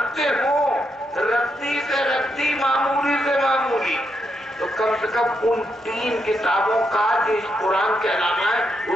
ہوں، رتی سے رتی، معمولی سے معمولی، تو کم سے کم ان 3 کتابوں کا جو اس قرآن کے علاوہ ہے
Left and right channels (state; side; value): normal; both; correlation 0.81